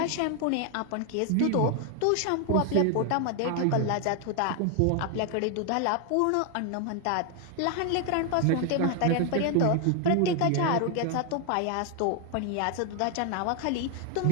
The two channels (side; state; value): both; different; correlation 0.01